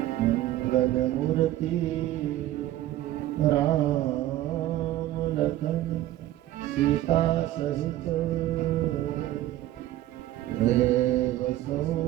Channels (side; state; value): left; quieter; 14.2 dB